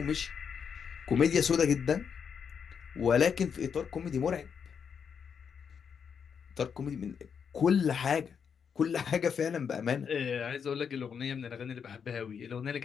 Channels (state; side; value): quieter; right; 6.9 dB